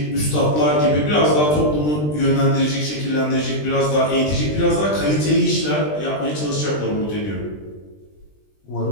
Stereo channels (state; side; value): late; right; 20 ms